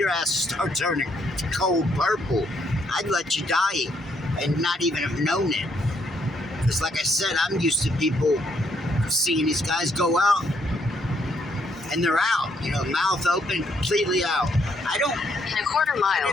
ass start turning cold purple. I'd let you die and not even have known it. Because like I said, I'm used to people seeing these guys go out and they're out, mouth open, completely out. In a quarter mile,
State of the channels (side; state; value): both; normal; correlation 0.72